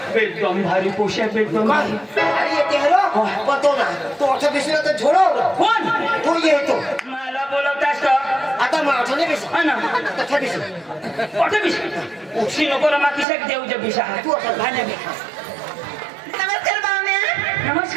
एकदम भारी पोशा एकदम भारी अरे ये तेरो पतो ना तो अच्छा बिसला तर झोडो कोण तो येतो मला बोलवतास का आता माझं नाही बिस हा ना तथा बिस कुठे बिस उशी नको रमा किशाक देऊ जे बिसा तू आता घाण्या बिस नमस्कार पाहुण्या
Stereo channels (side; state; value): left; drops out; at 13.2 s